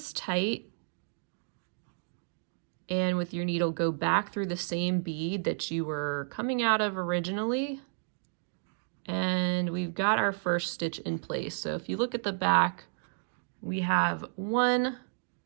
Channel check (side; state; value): left; silent; digital silence